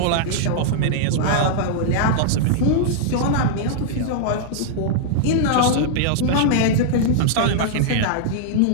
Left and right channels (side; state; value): both; different; correlation -0.01